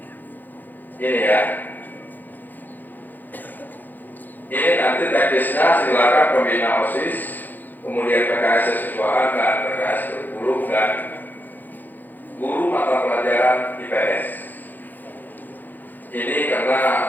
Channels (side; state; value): right; late; 0.086 ms